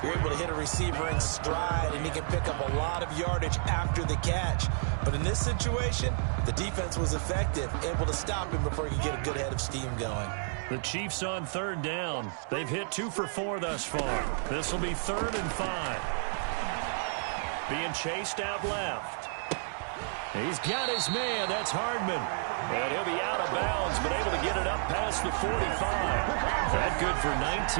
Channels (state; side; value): silent; left; digital silence